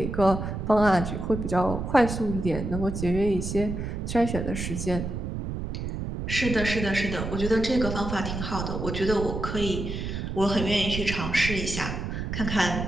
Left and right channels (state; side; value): noise; right; rumble, 4 dB below the sound